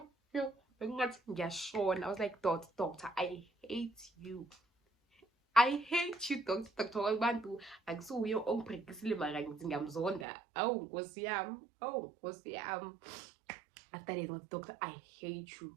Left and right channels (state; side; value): drops out; left; at 10.2 s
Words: Bengathi ngiyashona. I was like, doctor, I hate you, doctor. Abantu akusuye ongibhekisile mara ngithi ngiyamzonda. Awu nkosi yami. After that, doctor, I hate you.